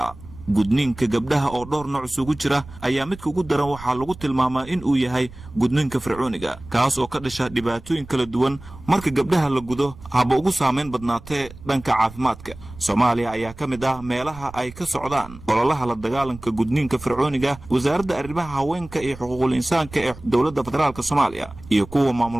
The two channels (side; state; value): right; noise; rumble, 17 dB below the sound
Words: gudniinka gabdhaha oo dhowr nooc isugu jira ayaa midka ugu daran waxaa lagu tilmaamaa in uu yahay gudniinka fircooniga kaas oo ka dhasha dhibaatooyin kala duwan marka gabdhaha la gudo haba ugu saameyn badnaatee dhanka caafimaadka. Soomaaliya ayaa ka mid ah meelaha ay ka socdaan ololaha la dagaalanka gudniinka fircooniga. wasaaradda arrimaha haweenka iyo xuquuqul insaanka ee dowladda federaalka Soomaaliya iyo kuwa maamul